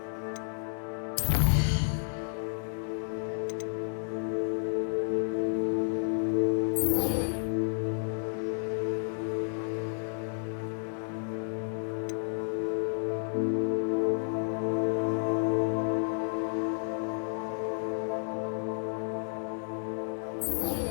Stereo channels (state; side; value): silent; right; digital silence